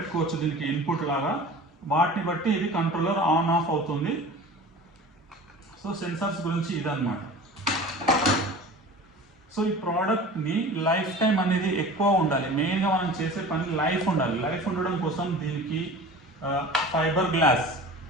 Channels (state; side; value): normal; both; correlation 0.39